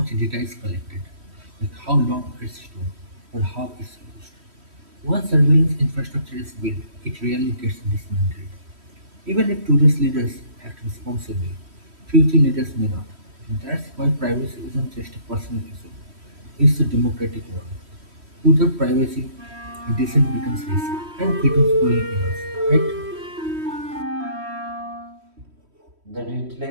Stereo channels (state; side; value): late; left; 3.1 ms